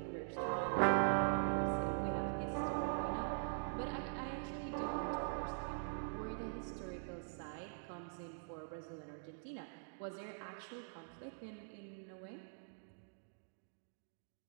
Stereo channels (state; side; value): silent; left; digital silence